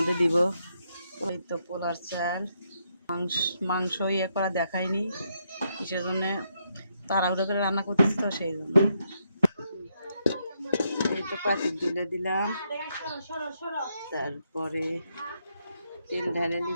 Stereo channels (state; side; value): inverted; both; correlation -0.78